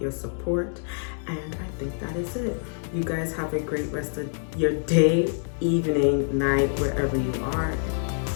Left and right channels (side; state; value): right; silent; 61 dB below the other